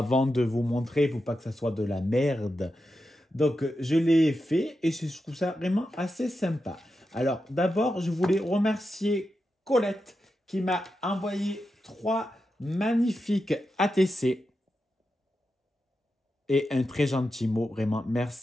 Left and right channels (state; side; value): normal; both; correlation 0.89